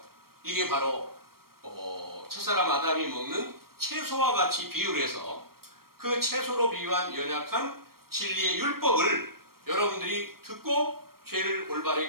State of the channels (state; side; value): late; left; 0.94 ms